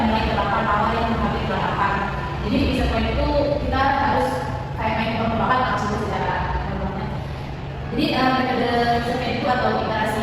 nilai delapan awal yang menghampiri delapan akar. Jadi di action point itu kita harus kayak main tebak-tebakan langsung secara gampangnya. Jadi metode action point itu atau iterasi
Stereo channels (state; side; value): identical; both; correlation 1.00